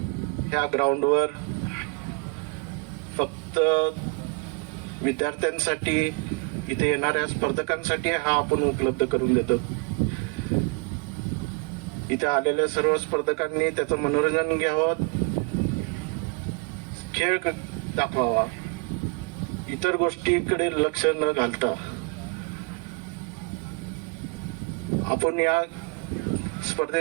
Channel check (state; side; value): quieter; left; 32.4 dB